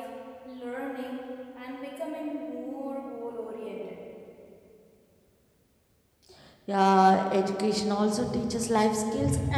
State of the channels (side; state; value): both; identical; correlation 1.00